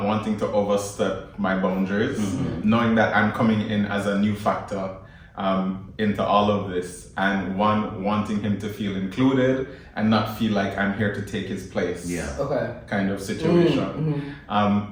wanting to overstep my boundaries, knowing that I'm coming in as a new factor into all of this, and wanting him to feel included and not feel like I'm here to take his place. Yeah. Okay. Kind of situation.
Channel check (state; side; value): identical; both; correlation 1.00